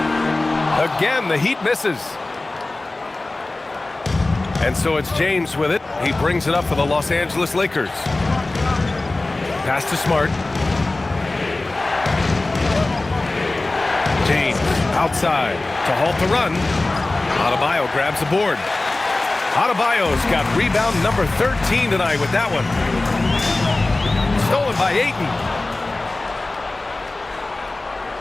Again, the Heat misses. And so it's James with it. He brings it up for the Los Angeles Lakers. Pass to Smart. James outside to halt the run. Adebayo grabs the board. Adebayo's got rebound number 13 tonight with that one. Stolen by Ayton.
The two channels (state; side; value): quieter; right; 3.0 dB